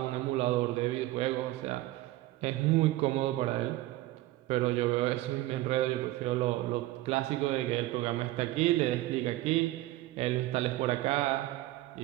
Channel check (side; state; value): left; quieter; 17.0 dB